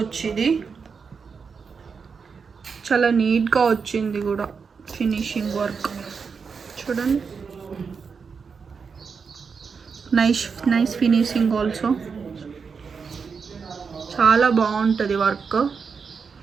ఇది చాలా నీట్గా వచ్చింది కూడా, ఫినిషింగ్ వర్క్ చూడండి. నైస్ ఫినిషింగ్ ఆల్సో, చాలా బాగుంటుంది వర్క్.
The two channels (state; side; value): quieter; left; 5.6 dB